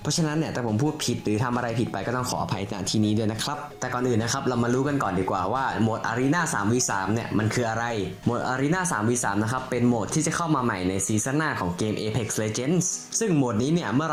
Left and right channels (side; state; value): both; identical; correlation 1.00